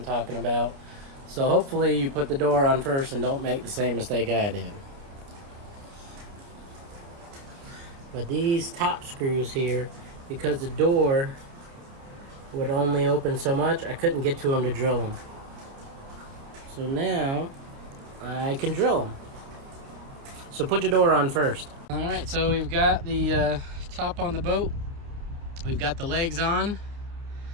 talking about. So hopefully you put the door on first and don't make the same mistake I did. But these top screws here, because the door would only open so much, I couldn't get to them to drill them. So now I can drill them. So put your door on first. Alright, so we've got the top on the boat. We've got the legs on.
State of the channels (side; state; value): left; late; 29 ms